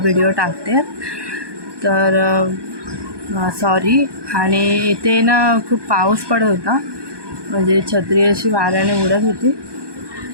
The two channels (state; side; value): late; left; 1.2 ms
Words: व्हिडिओ टाकते. तर सॉरी. आणि इथे ना खूप पाऊस पडत होता, म्हणजे छत्री अशी वाऱ्याने उडत होती.